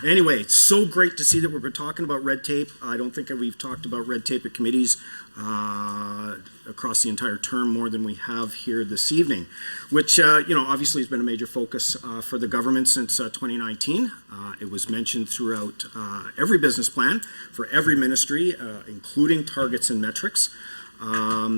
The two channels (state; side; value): inverted; both; correlation -1.00